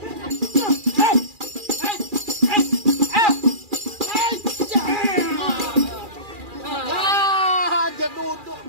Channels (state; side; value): late; left; 2.4 ms